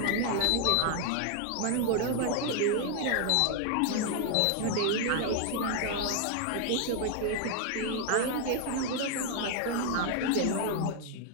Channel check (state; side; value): different; both; correlation 0.00